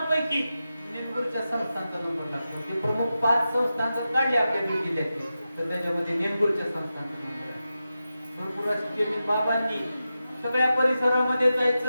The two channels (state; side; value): inverted; both; correlation -0.91